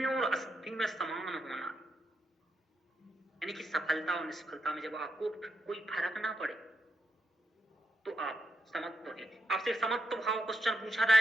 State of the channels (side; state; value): both; normal; correlation 0.82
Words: और असिद्धि में समान होना, यानी कि सफलता और निष्फलता में जब आपको कोई फर्क ना पड़े तो आप समत्व है। आपसे समत्व भाव क्वेश्चन पूछा